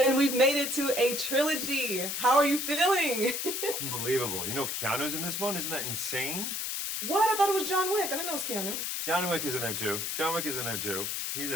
we've made it to a trilogy. How are you feeling? Unbelievable. You know, Keanu's in this one. Isn't that insane? What? I thought it was John Wick. I didn't know it was Keanu. John Wick is in there too. John Wick is in there too. He's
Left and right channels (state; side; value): noise; left; hiss, 2 dB below the sound